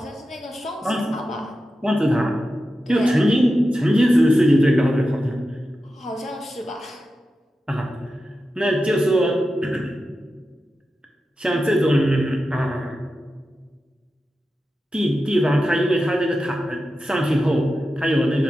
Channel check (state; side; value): normal; both; correlation 0.91